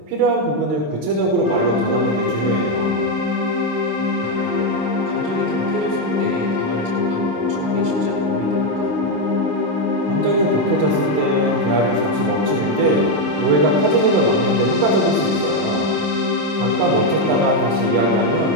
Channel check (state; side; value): late; left; 27 ms